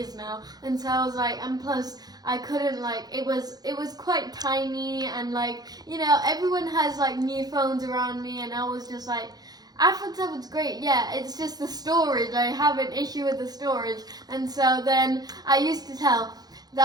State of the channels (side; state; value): left; late; 0.19 ms